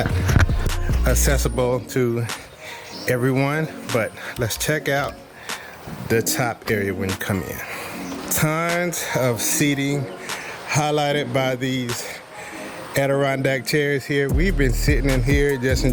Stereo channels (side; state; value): both; identical; correlation 1.00